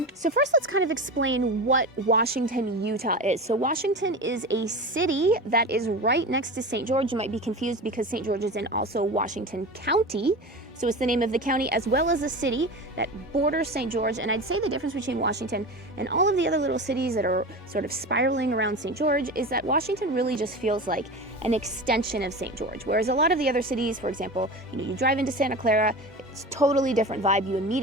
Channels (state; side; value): normal; both; correlation 0.29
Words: So first, let's kind of explain what Washington, Utah is. So Washington is a city that is right next to St. George. You might be confused because St. George is in also Washington County. So it's the name of the county as well as a city that borders St. George. And I'd say the difference between Washington and all of the other little cities that are sort of spiraling around St. George is that Washington really just feels like an extension of St. George. Whereas a lot of the other cities, for example, you drive into Santa Clara, it's a totally different vibe. You